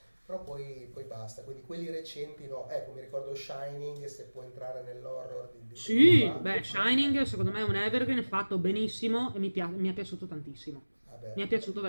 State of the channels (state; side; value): inverted; both; correlation -1.00